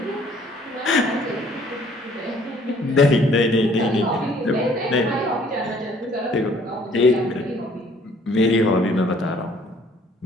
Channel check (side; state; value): both; normal; correlation 0.59